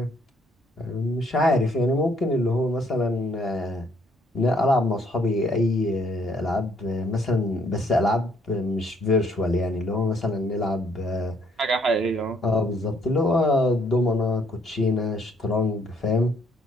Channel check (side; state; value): both; normal; correlation 0.67